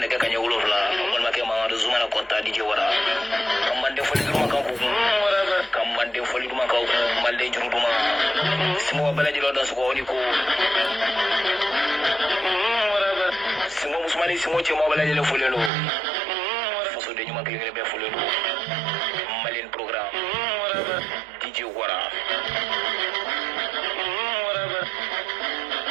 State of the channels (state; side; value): drops out; left; at 15.7 s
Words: Nega Kanya Ulovla Makema Zumana Kota DJ Wara Kamande Foliduma Kamande Foliduma Malde Juruma Small Village Lodas Wonico Simo Musmani Simo Chemo Village Fuleno Foso de Numa Klebe Fuleno Malin program DJ Wara